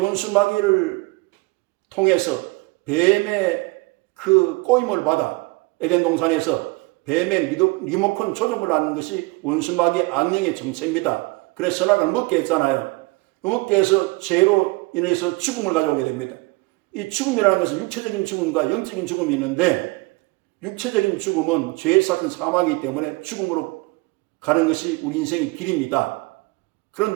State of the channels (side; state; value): left; quieter; 24.8 dB